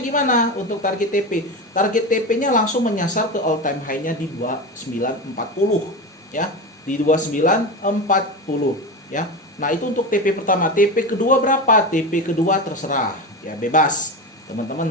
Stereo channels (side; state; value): both; normal; correlation 0.22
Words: gimana? Untuk target TP, target TP-nya langsung menyasar ke all time high-nya di 2940 ya, di 2940 ya. Nah, itu untuk TP pertama. TP kedua berapa? TP kedua terserah ya, bebas. Teman-teman